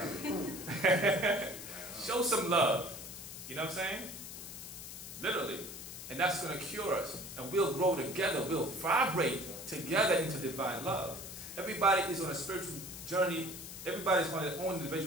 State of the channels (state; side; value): noise; left; hiss, 11 dB below the sound